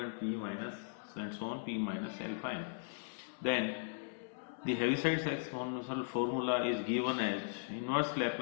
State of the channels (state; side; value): silent; right; 52 dB below the other